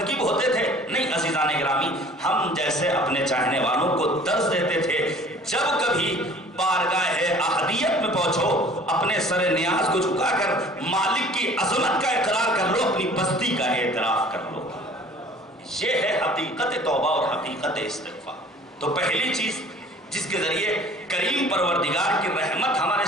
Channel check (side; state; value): both; normal; correlation 0.49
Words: ہوتے تھے؟ نہیں عزیزان گرامی، ہم جیسے اپنے چاہنے والوں کو درس دیتے تھے، جب کبھی بارگاہ احدیت میں پہنچو اپنے سر نیاز کو جھکا کر مالک کی عظمت کا اقرار کر لو، اپنی بستی کا اعتراف کر لو۔ یہ ہے حقیقت توبہ اور حقیقت استغفار۔ تو پہلی چیز جس کے ذریعے کریم پروردگار کی رحمت ہمارے